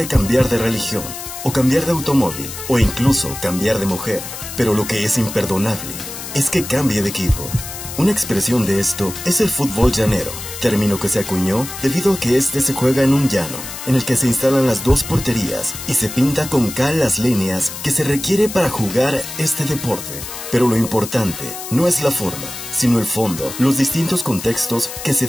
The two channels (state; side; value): noise; left; hiss, 10 dB below the sound